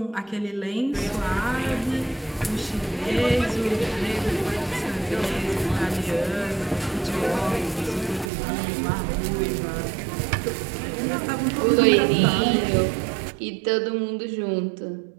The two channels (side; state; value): left; drops out; at 8.3 s